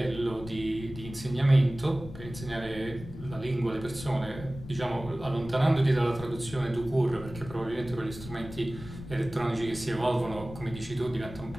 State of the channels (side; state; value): left; noise; rumble, 13 dB below the sound